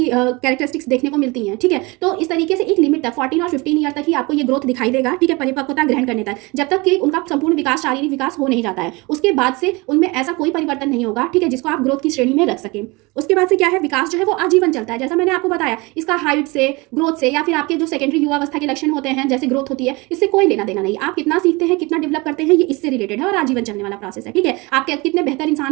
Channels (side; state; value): left; quieter; 25.1 dB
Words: कैरेक्टरिस्टिक्स देखने को मिलती हैं, ठीक है। तो इस तरीके से एक लिमिट तक 14 और 15 ईयर तक ही आपको ये ग्रोथ दिखाई देगा, ठीक है, परिपक्वता ग्रहण करने तक, जब तक कि उनका संपूर्ण विकास, शारीरिक विकास हो नहीं जाता है। उसके बाद से उनमें ऐसा कोई परिवर्तन नहीं होगा, ठीक है, जिसको आप ग्रोथ की श्रेणी में रख सकें। उसके बाद से क्या है, विकास जो है वो आजीवन चलता है। जैसा मैंने आपको बताया, इसका हाइट से, ग्रोथ से, या फिर आपके जो सेकेंडरी युवावस्था के लक्षण होते हैं जैसे ग्रोथ होती है, इससे कोई लेना देना नहीं। आप कितना सीखते हैं, कितना डेवलप करते हैं, ये इससे रिलेटेड है और आजीवन चलने वाला प्रोसेस है, ठीक है। आप कितने बेहतर